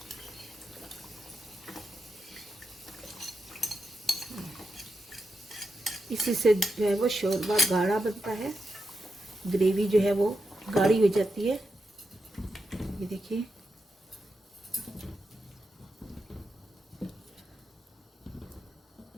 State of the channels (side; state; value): both; normal; correlation 0.87